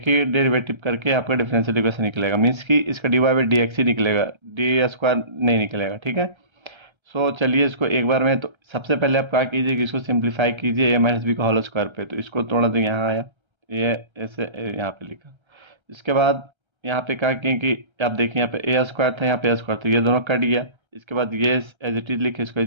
ही डेरिवेटिव करके आपका डिफरेंशियल इक्वेशन निकलेगा, मीन्स कि इसका d Y by D x ही निकलेगा, डी स्क्वायर नहीं निकलेगा। ठीक है। सो चलिए इसको एक बार में, तो सबसे पहले आप क्या कीजिए कि इसको सिंप्लीफाई कीजिए ए माइनस बी का होल स्क्वायर पे। तो इसको थोड़ा तो यहाँ आया, ये ऐसे यहाँ पे लिखा। इसके बाद यहाँ पे क्या किए कि आप देखिए, यहाँ पे ए स्क्वायर था, यहाँ पे ए स्क्वायर था, ये दोनों कट गया। इसके बाद ये एज इट इज लिखे, इसको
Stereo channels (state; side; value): late; left; 1.3 ms